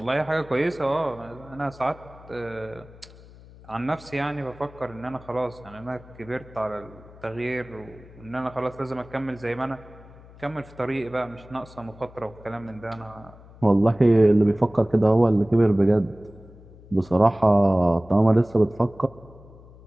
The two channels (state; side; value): noise; left; hum, 21 dB below the sound